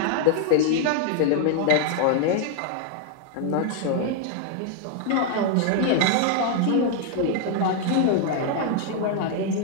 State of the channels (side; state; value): both; different; correlation 0.00